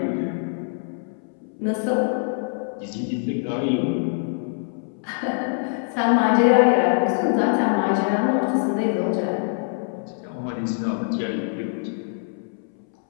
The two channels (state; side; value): silent; right; 63 dB below the other